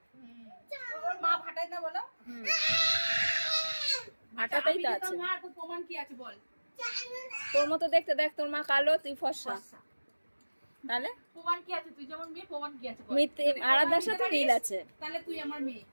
মা ভাটায় না বলো? ভাটাতেই তো আছে। প্রমাণ কি আছে বল? তোর মতো দেখতে, দেখ তোর মা কালো, তুই ফর্সা। তাহলে প্রমাণ কি আছে? তুই যেমন মেয়ে, প্রমাণ কি আছে বল? আরাধ্যার সাথে মিল আছে। তাহলে তুই আমার মেয়ে।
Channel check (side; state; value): both; inverted; correlation -1.00